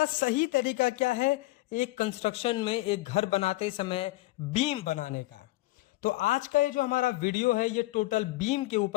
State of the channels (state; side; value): quieter; right; 19.4 dB